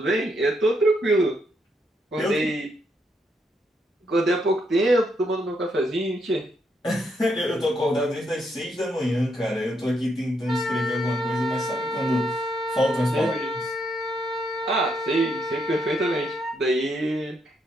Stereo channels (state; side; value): normal; both; correlation 0.77